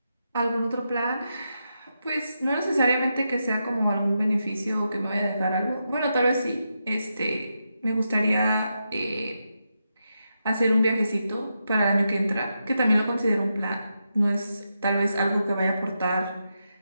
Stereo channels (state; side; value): inverted; both; correlation -0.86